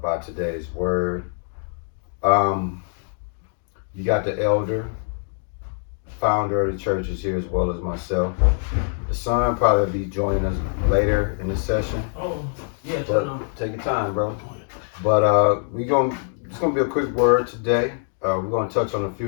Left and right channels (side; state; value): right; silent; digital silence